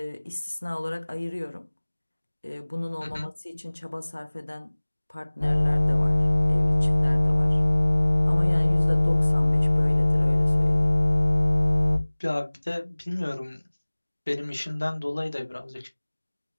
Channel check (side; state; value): both; inverted; correlation -1.00